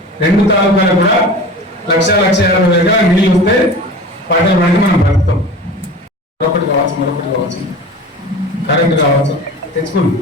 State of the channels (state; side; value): normal; both; correlation 0.36